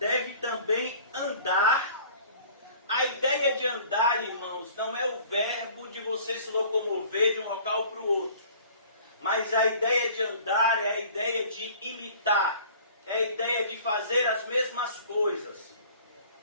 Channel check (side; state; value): both; inverted; correlation -0.49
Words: também andar. A ideia de andar, irmãos, não é o verbo de você se locomover de um local para o outro. Mas a ideia de andar é a ideia de imitar. É a ideia de fazer as mesmas coisas.